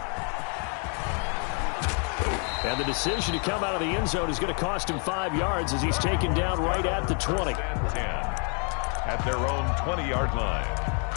And the decision to come out of the end zone is going to cost him 5 yards as he's taken down right at the 20. 10 at their own 20-yard line.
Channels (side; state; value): right; quieter; 39.9 dB